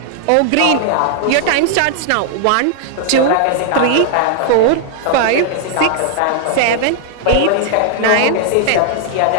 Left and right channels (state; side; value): different; both; correlation 0.00